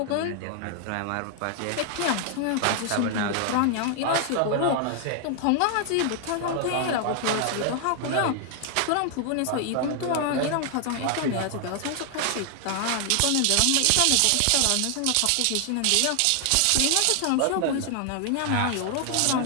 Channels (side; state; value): both; different; correlation 0.00